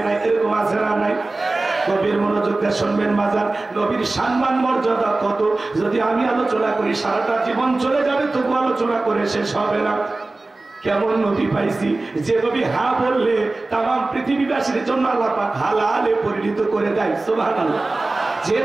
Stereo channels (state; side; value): quieter; left; 3.2 dB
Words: নাই। এরকম আছে না নাই? নবীর মনোযোগ দিয়ে শুনবেন বাজার, নবীর সম্মান মর্যাদা কত যদি আমি আলোচনা করি সারাটা জীবন চলে যাবে, তবু আলোচনা করে শেষ হবে না। কেমন নবী পাইছি, যে নবী হা বললে তামাম পৃথিবীবাসীর জন্য আল্লাহ পাক হালালে পরিণত করে দেয়। সুবহানাল্লাহ। যে